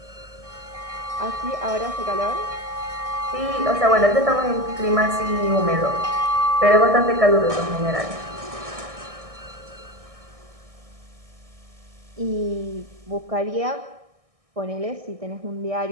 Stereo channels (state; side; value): late; left; 1.6 ms